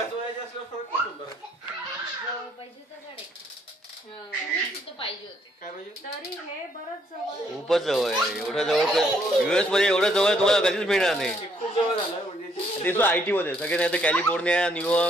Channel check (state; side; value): normal; both; correlation 0.69